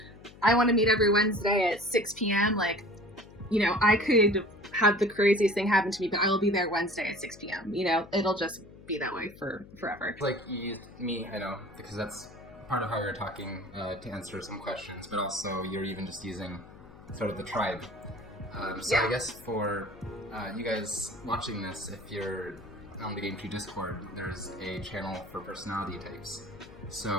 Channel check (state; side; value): noise; left; hum, 20 dB below the sound